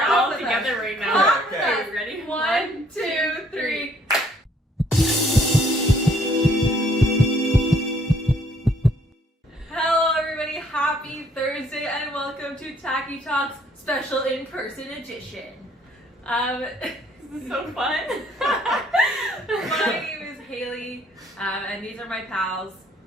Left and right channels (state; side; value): normal; both; correlation 0.64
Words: all with together us. right now. Clap with Okay. us. Ready? 1, 2, 3. Hello everybody, happy Thursday and welcome to Tachy Talks special in-person edition. This is so fun. My name is Hailey, and these are my pals.